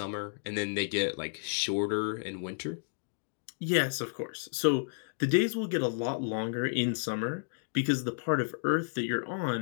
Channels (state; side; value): silent; right; digital silence